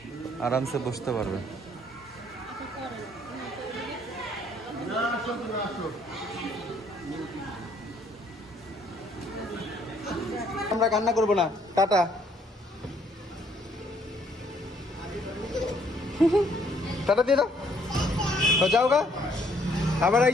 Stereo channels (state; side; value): normal; both; correlation 0.65